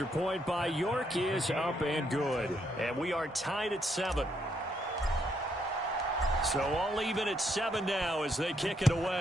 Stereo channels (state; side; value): normal; both; correlation 0.74